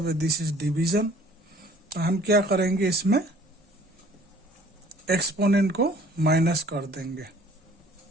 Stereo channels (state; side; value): normal; both; correlation 0.54